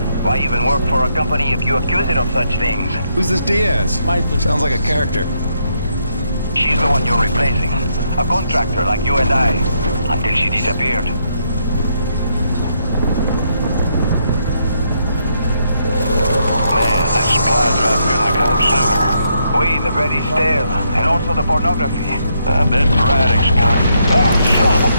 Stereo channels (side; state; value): both; inverted; correlation -0.76